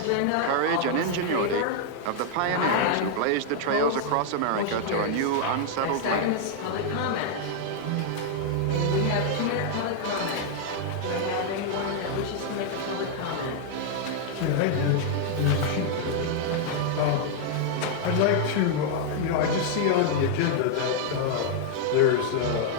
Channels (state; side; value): different; both; correlation 0.00